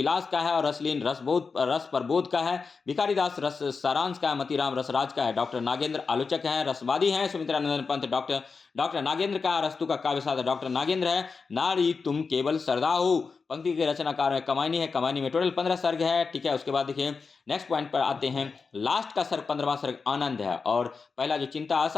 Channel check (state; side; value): quieter; right; 4.9 dB